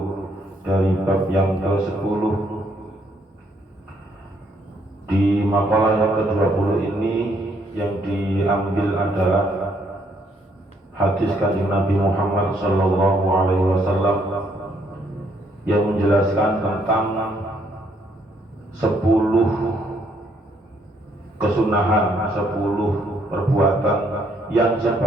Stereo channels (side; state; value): both; normal; correlation 0.70